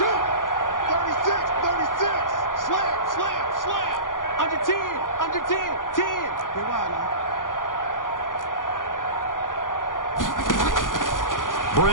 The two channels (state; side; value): late; right; 0.89 ms